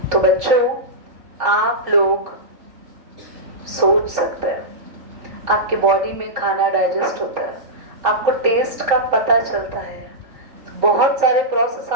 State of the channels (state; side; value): late; left; 3.9 ms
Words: तो बच्चों आप लोग सोच सकते हैं, आपके बॉडी में खाना डाइजेस्ट होता है, आपको टेस्ट का पता चलता है, बहुत सारे प्रोसेस